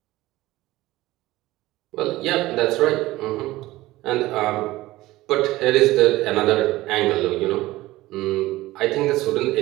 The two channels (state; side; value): quieter; left; 17.7 dB